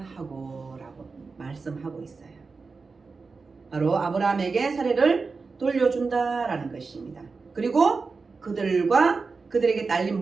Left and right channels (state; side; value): quieter; left; 4.4 dB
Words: 하고 라고 말씀하고 있어요. 바로 아브라함에게 사례를 돌려준다라는 것입니다. 그리고 그들에게 딸린